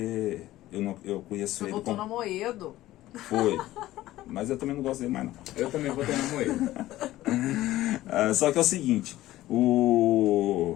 eu conheço Você ele votou como... no Amoedo. Foi. Mas eu também não gosto dele mais, não. Eu também votei na Moeda. Só que é o seguinte,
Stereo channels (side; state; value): right; quieter; 15.5 dB